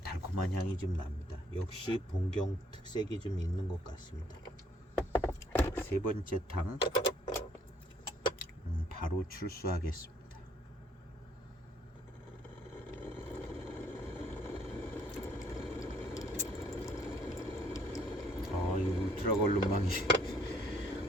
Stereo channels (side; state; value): both; normal; correlation 0.65